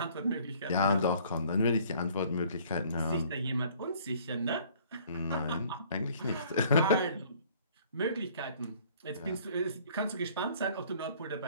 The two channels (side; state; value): both; inverted; correlation -0.56